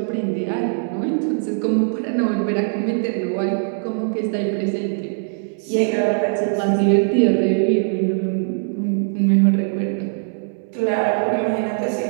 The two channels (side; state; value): left; silent; 65 dB below the other